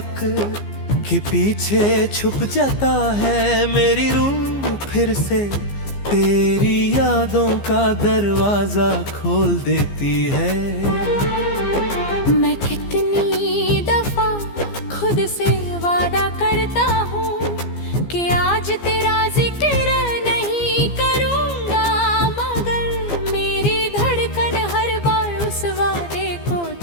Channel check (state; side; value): late; right; 15 ms